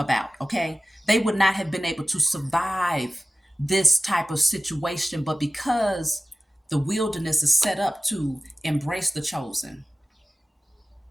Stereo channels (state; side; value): normal; both; correlation 0.97